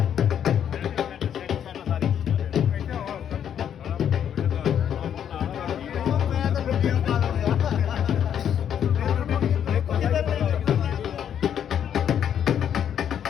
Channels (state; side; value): quieter; right; 9.1 dB